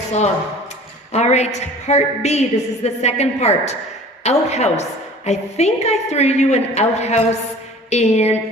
All right, part B, this is the second part. Outhouse. I think I threw you an outhouse in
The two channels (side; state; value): both; normal; correlation 0.45